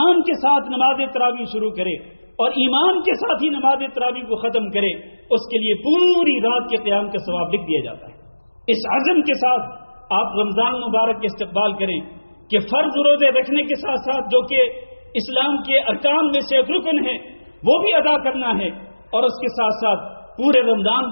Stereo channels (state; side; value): inverted; both; correlation -1.00